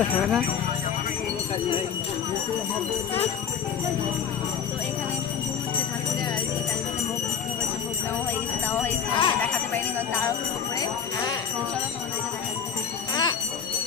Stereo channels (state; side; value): quieter; right; 7.5 dB